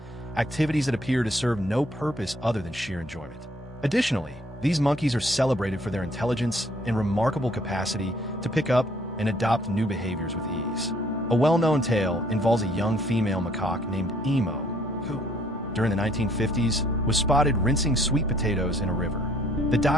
activities that appear to serve no purpose other than sheer enjoyment. Additionally, these monkeys are celebrated for their intelligence and remarkable capacity to pick up and adopt new behaviors with ease. A well-known tale involves a young female macaque named Emo, who, during the 1950s, was spotted rinsing sweet potatoes in a river. The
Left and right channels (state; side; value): normal; both; correlation 0.63